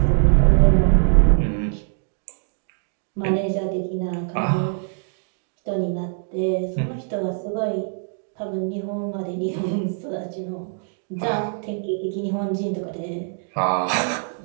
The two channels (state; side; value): silent; left; digital silence